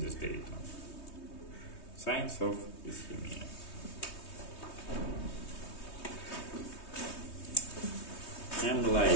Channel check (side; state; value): right; late; 3.2 ms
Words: data. Signs of ischemia. M